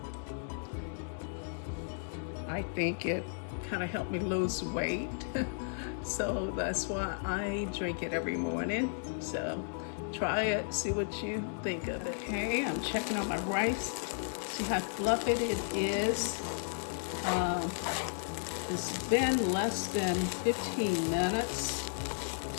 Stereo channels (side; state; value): right; silent; digital silence